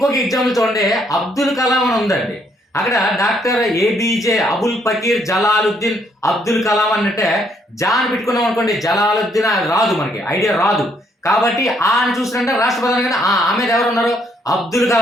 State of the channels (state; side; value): normal; both; correlation 0.70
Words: ఎగ్జాంపుల్ చూడండి, అబ్దుల్ కలాం అని ఉందండి. అక్కడ డాక్టర్ ఏబీజే అబుల్ ఫకీర్ జలాలుద్దీన్ అబ్దుల్ కలాం అంటే జా అని పెట్టుకున్నాం అనుకోండి, జలాలుద్దీన్ రాదు, మనకి ఐడియా రాదు. కాబట్టి ఆ అని చూసినట్టే రాష్ట్రపతి అనగానే ఆమె ఎవరు ఉన్నారు, అబ్దుల్